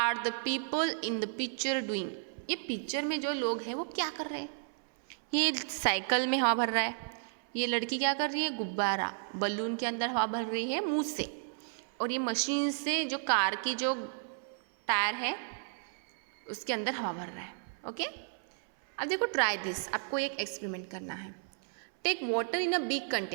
the people in the picture doing, ये पिक्चर में जो लोग हैं वो क्या कर रहे हैं। ये साइकिल में हवा भर रहा है, ये लड़की क्या कर रही है, गुब्बारा बलून के अंदर हवा भर रही है मुंह से, और ये मशीन से जो कार की जो टायर है उसके अंदर हवा भर रहा है। ओके, अब देखो ट्राई दिस, आपको एक एक्सपेरिमेंट करना है। Take water in a big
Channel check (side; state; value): left; silent; 56 dB below the other